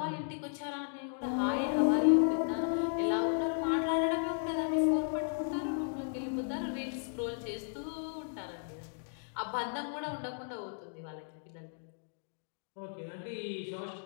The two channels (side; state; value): right; silent; digital silence